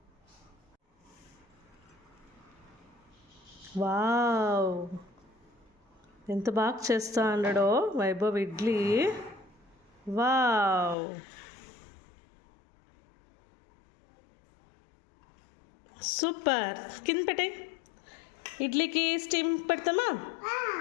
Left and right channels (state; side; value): drops out; right; at 11.0 s